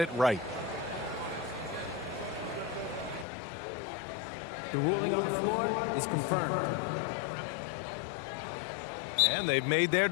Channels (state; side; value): drops out; right; at 3.2 s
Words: right. The ruling on the floor is confirmed. And they've made their